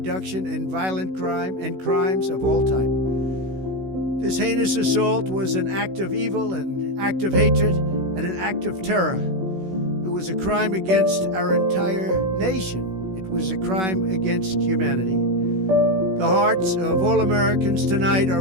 in violent crime and crimes of all type. This heinous assault was an act of evil, an act of hatred, and an act of terror. It was a crime against our entire nation. It was a crime against humanity. The hearts of all Americans tonight are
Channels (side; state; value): left; late; 16 ms